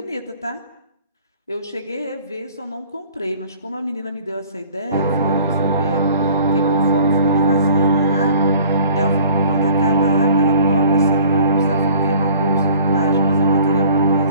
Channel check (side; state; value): both; inverted; correlation -0.51